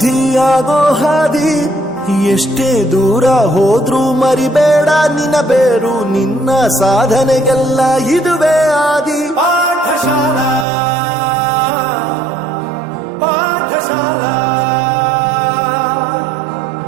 ಹಾದಿ. ಎಷ್ಟೇ ದೂರ ಹೋದ್ರೂ ಮರಿಬೇಡ ನಿನ್ನ ಬೇರು, ನಿನ್ನ ಸಾಧನೆಗೆಲ್ಲ ಇದುವೇ ಆದಿ. ಪಾಠಶಾಲಾ ಪಾಠಶಾಲಾ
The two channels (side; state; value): left; drops out; at 10.7 s